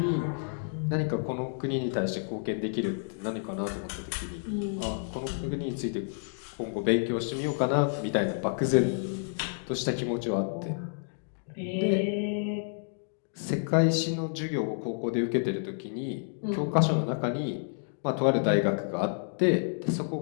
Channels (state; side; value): silent; right; digital silence